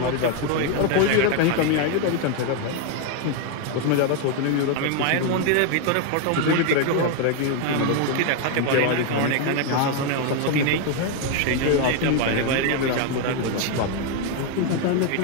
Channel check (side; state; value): both; different; correlation 0.01